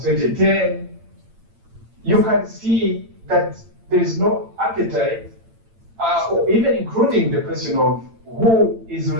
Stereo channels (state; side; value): late; left; 8.9 ms